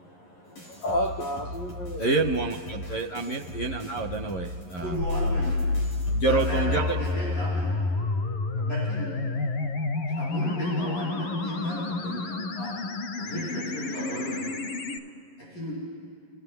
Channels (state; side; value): late; right; 11 ms